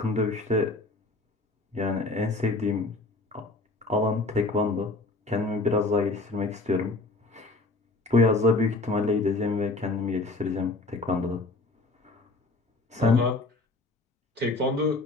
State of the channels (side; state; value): right; quieter; 3.1 dB